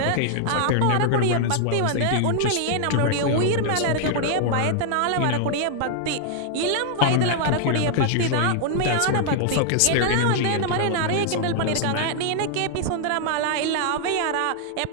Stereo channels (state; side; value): different; both; correlation -0.01